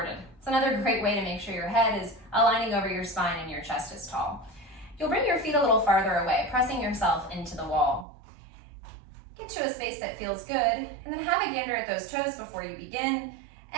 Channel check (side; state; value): left; drops out; at 8.1 s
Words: It's another great way to make sure your head is aligning over your spine and your chest is tall. You'll bring your feet a little farther away, pressing yourself into the wall. Get to a space that feels good, and then have a gander at those toes before you begin,